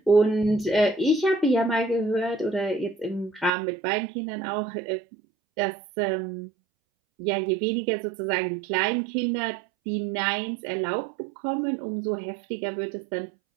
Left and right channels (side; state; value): left; drops out; at 3.5 s